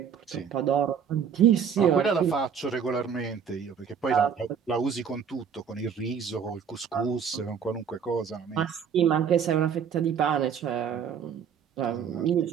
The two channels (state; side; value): quieter; left; 7.3 dB